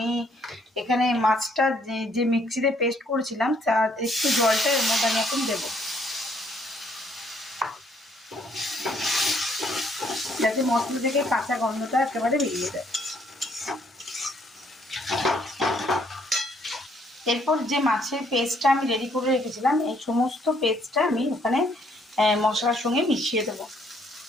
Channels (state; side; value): normal; both; correlation 0.67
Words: এখানে মাছটা যে মিক্সিতে পেস্ট করেছিলাম তার একটু জলটা এর মধ্যে আমি এখন দেবো, যাতে মশলা থেকে কাঁচা গন্ধটা একেবারে বেরিয়ে যায়। এরপর যে মাছের পেস্টটা আমি রেডি করে রেখেছিলাম এই সমস্ত পেস্টটা আমি ওখানে মশলার সঙ্গে মিশিয়ে দেবো।